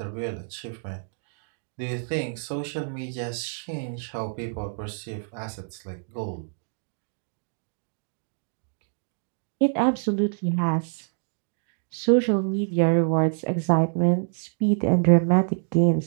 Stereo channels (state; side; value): silent; left; digital silence